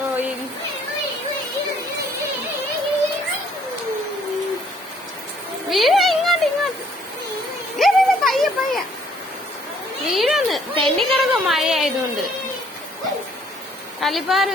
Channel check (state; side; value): normal; both; correlation 0.63